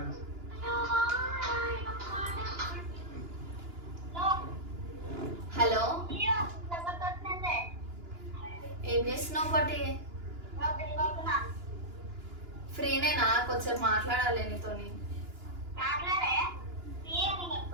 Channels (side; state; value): left; late; 2.9 ms